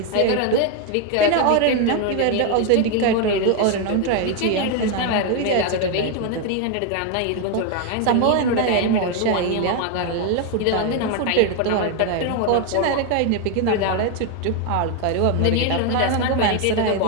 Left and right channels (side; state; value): both; different; correlation 0.01